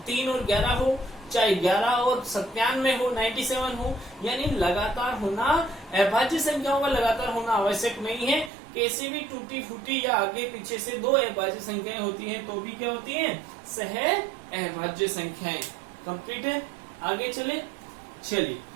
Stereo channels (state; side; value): drops out; left; at 8.5 s